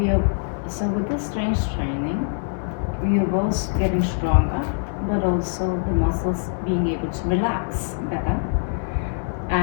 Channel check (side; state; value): right; silent; 63 dB below the other